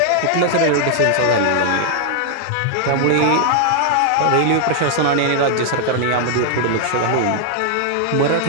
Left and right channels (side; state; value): both; different; correlation 0.00